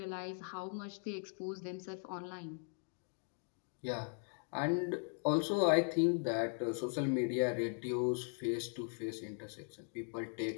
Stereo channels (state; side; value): silent; right; 52 dB below the other